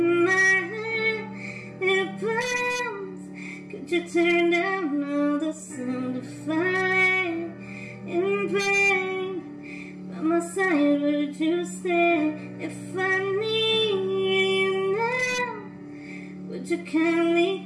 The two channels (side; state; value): both; identical; correlation 1.00